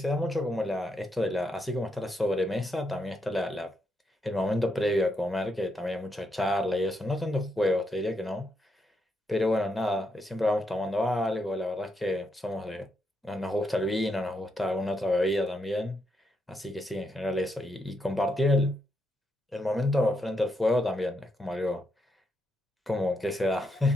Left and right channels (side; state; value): both; normal; correlation 0.80